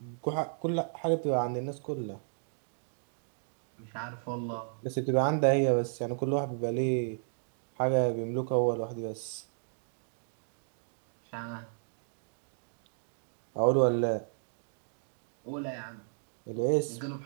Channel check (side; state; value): left; silent; digital silence